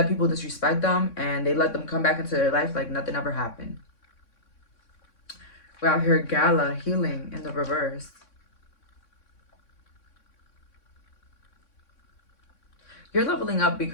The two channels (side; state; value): right; late; 3.6 ms